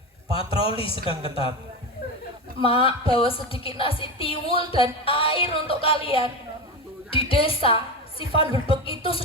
Patroli sedang ketat. Mak, bawa sedikit nasi tiwul dan air untuk kalian. Di desa, si Van der Beek itu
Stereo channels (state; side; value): normal; both; correlation 0.19